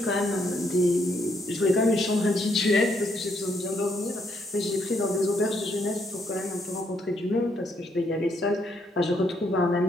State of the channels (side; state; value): both; normal; correlation 0.73